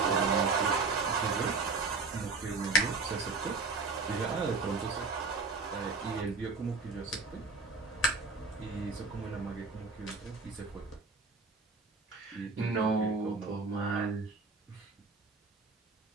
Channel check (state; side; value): quieter; left; 4.0 dB